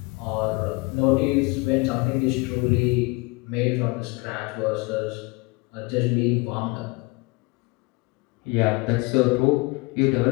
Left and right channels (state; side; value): quieter; right; 26.4 dB